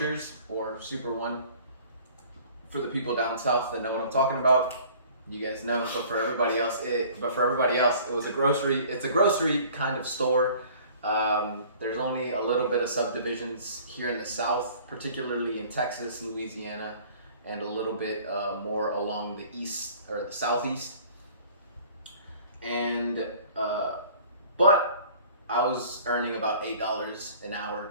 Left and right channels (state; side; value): inverted; both; correlation -0.50